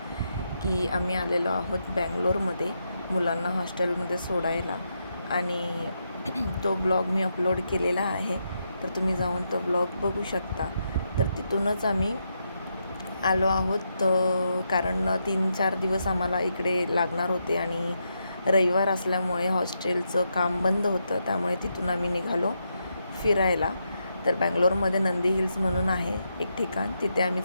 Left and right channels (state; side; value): inverted; both; correlation -0.82